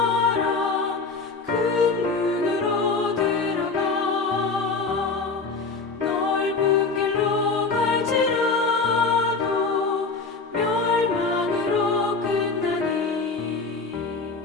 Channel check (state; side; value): quieter; right; 4.2 dB